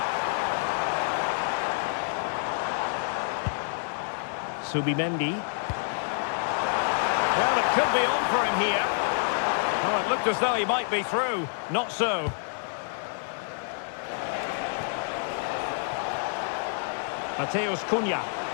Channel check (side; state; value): right; silent; 59 dB below the other